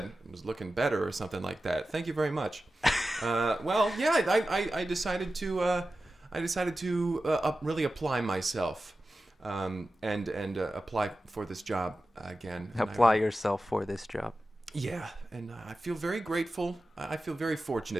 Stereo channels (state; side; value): normal; both; correlation 0.94